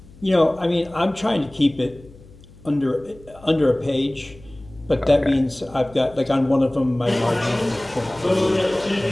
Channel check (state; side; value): noise; left; hum, 22 dB below the sound